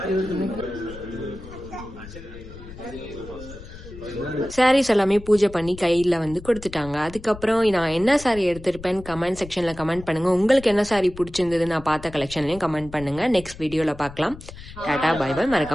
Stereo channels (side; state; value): left; noise; rumble, 15 dB below the sound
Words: சாரீஸ் எல்லாமே பூஜை பண்ணி கையில் வந்து கொடுத்துட்டாங்க. அதுக்கப்புறம் நான் என்ன சாரீ எடுத்திருப்பேன்னு கமெண்ட் செக்ஷனில் கமெண்ட் பண்ணுங்கள். உங்களுக்கு என்ன சாரீ பிடிச்சிருந்தது நான் பார்த்த கலெக்ஷன்லையும் கமெண்ட் பண்ணுங்கள். நெக்ஸ்ட் வீடியோவில் பார்க்கலாம். Tata, bye bye.